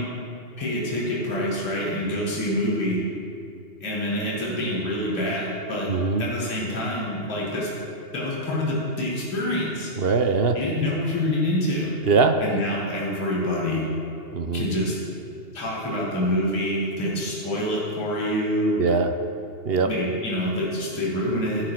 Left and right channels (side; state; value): left; late; 2.7 ms